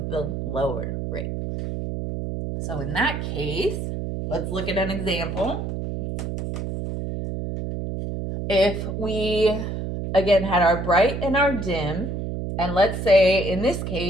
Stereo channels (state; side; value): noise; right; hum, 4 dB below the sound